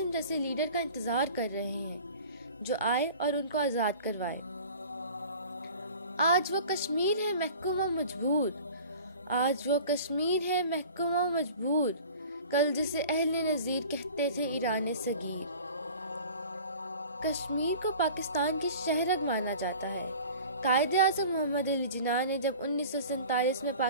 جیسے لیڈر کا انتظار کر رہے ہیں جو آئے اور ان کو آزاد کروائے۔ آج وہ کشمیر ہے محکوم و مجبور، آج وہ کشمیر ہے محکوم و مجبور، کل جسے اہل نظیر کہتے تھے ایران صغیر۔ کشمیر کو پاکستان کی شہرگ مانا جاتا ہے۔ قائد اعظم محمد علی جناح نے جب 1947 میں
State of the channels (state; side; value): inverted; both; correlation -0.42